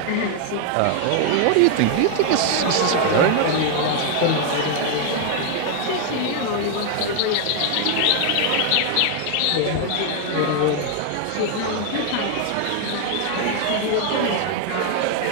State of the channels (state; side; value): different; both; correlation 0.00